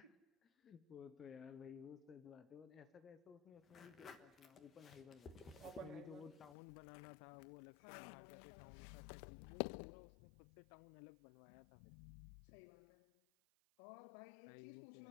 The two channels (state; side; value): drops out; right; at 6.6 s